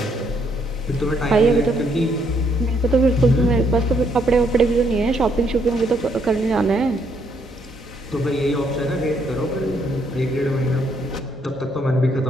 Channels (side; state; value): both; normal; correlation 0.71